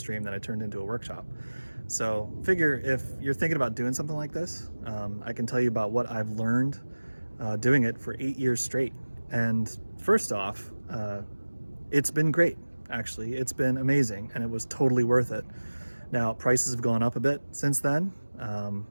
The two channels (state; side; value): inverted; both; correlation -1.00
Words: that I turned into a workshop. So figure if you're thinking about doing something like this, I can tell you about what I've learned doing it for 8 years straight. And first off, it's been great, actually. It's been amazing and it was totally worth it. Now, prices have gone up a bit since then.